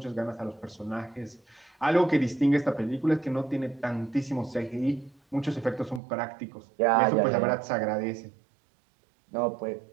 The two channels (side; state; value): left; drops out; at 6.0 s